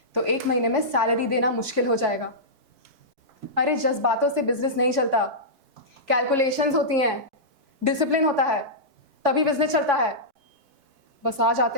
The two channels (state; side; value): late; left; 4.6 ms